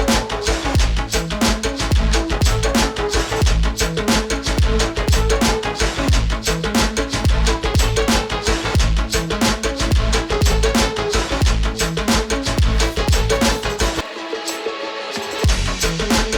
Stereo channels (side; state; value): both; identical; correlation 1.00